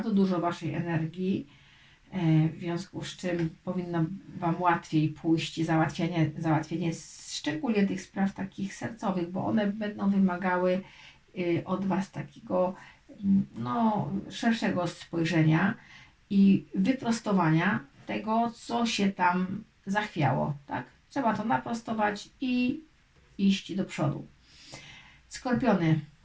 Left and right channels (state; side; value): identical; both; correlation 1.00